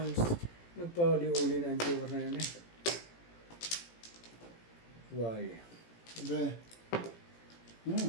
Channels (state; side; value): late; right; 18 ms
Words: Nagpahuli-uli na ang joker na yun eh. Why? Sabi,